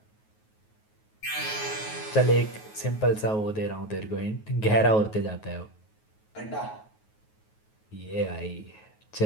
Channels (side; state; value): right; late; 9.4 ms